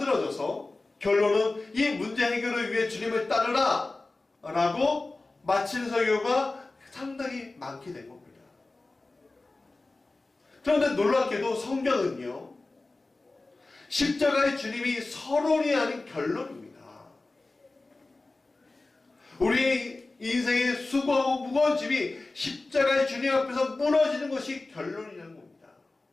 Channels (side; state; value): right; quieter; 3.2 dB